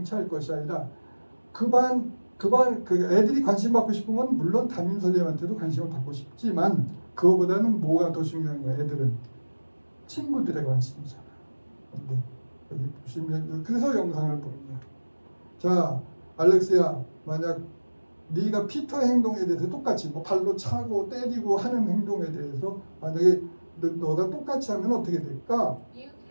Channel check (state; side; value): inverted; both; correlation -1.00